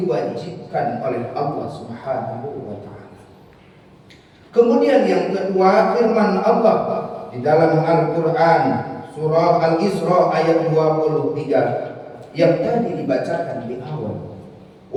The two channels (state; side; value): identical; both; correlation 1.00